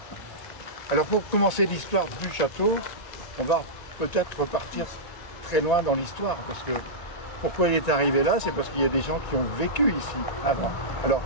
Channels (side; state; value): right; late; 1.8 ms